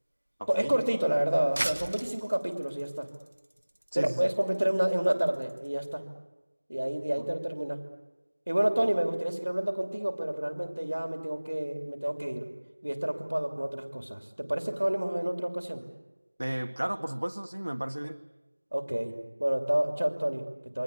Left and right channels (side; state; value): both; inverted; correlation -1.00